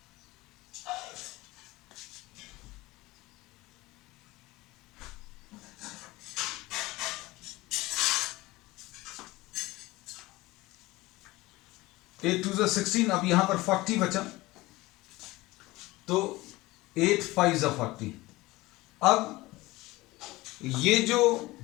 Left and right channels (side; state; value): right; quieter; 20.0 dB